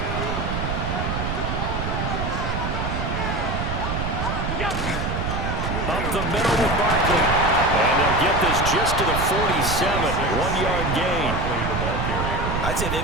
Up the middle with Barkley. And they'll get this just to the 47. 1-yard gain. I'd say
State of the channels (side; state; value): right; noise; rumble, 2 dB below the sound